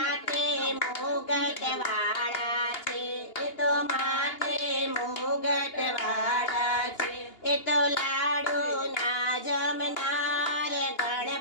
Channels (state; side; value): late; right; 2.8 ms